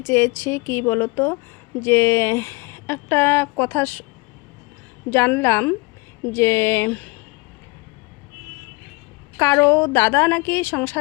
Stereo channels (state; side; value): quieter; right; 26.6 dB